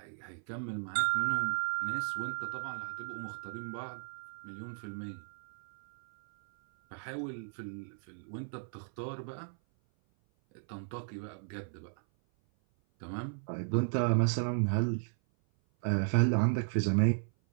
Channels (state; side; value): silent; left; 54 dB below the other